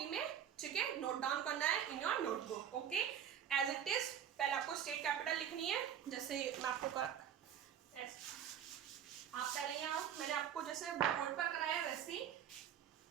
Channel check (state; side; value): quieter; left; 9.2 dB